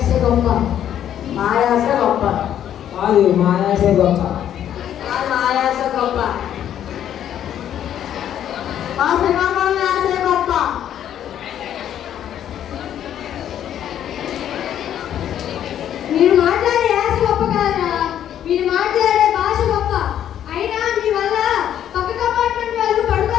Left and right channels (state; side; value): quieter; right; 10.4 dB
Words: గొప్ప. మా యాస గొప్ప. కాదు, మా యాసే గొప్ప. మా యాస గొప్ప. మా శ్రీకాకుళం యాస గొప్ప. మీరు మాట్లాడే యాస గొప్ప కాదురా, మీరు మాట్లాడే భాష గొప్ప. అయినా మీ వల్ల పక్క కంపార్ట్మెంట్ వాళ్ళు